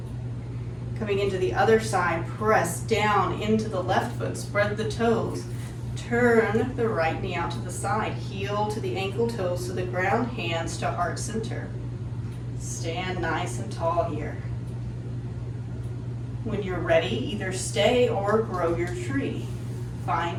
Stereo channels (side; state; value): both; identical; correlation 1.00